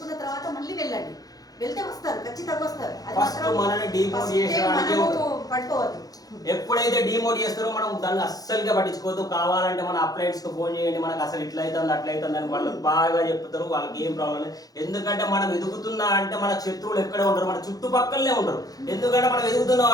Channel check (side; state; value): right; late; 0.18 ms